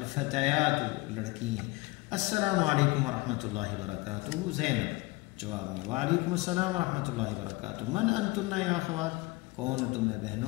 لڑکیاں۔ السلام علیکم ورحمۃ اللہ وبرکاتہ، زینب، جواب میں وعلیکم السلام ورحمۃ اللہ وبرکاتہ، من انتن یا اخوات، کون تمہیں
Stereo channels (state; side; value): quieter; right; 22.7 dB